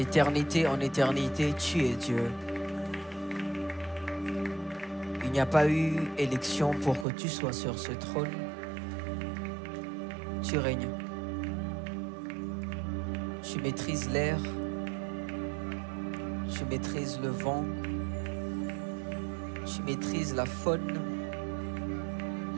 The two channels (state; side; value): drops out; left; at 7.1 s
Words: en éternité, tu es Dieu. Il n'y a pas eu élection pour que tu sois sur ce trône. Tu règnes. Tu maîtrises l'air. Tu maîtrises le vent. Tu maîtrises la faune.